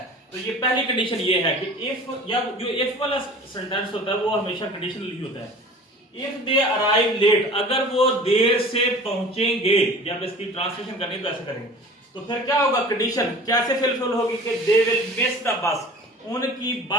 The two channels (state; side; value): normal; both; correlation 0.42